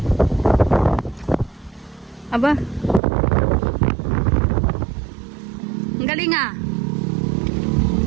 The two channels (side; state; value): left; drops out; at 3.0 s